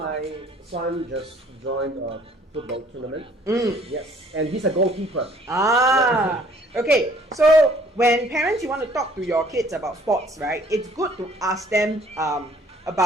son just joined a football tournament. Yes, and he's a goalkeeper. Okay, so when parents, you want to talk to your kids about sports, right? It's good to ask them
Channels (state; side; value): normal; both; correlation 0.58